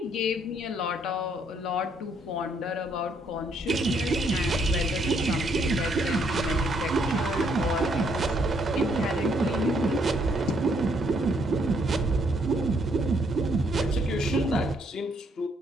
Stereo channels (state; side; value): normal; both; correlation 0.71